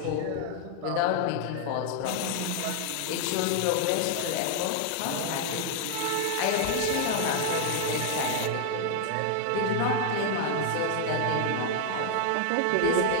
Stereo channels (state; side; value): different; both; correlation 0.00